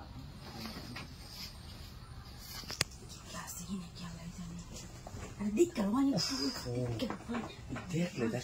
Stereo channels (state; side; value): identical; both; correlation 1.00